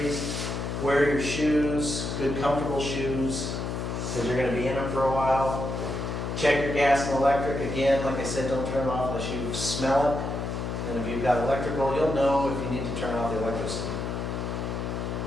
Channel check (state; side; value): noise; left; hum, 3 dB below the sound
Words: Wear your shoes, good comfortable shoes, because you're going to be in them for a while. Check your gas and electric. Again, like I said, don't turn it off unless you smell it. And if you've got electrical, you'll know if you need to turn off the electricity.